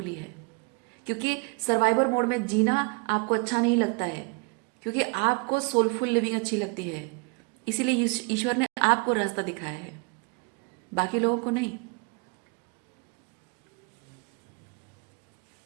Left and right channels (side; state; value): left; quieter; 29.8 dB